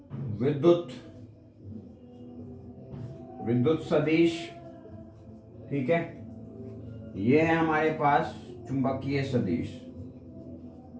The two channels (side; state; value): both; identical; correlation 1.00